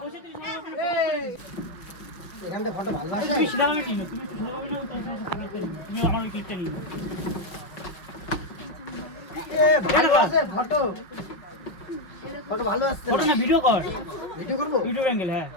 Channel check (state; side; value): late; right; 5.6 ms